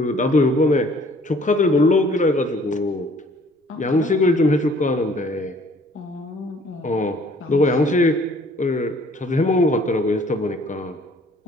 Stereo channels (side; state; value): both; normal; correlation 0.57